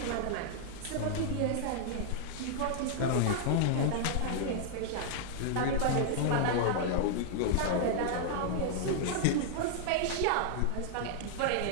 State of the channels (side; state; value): both; different; correlation -0.01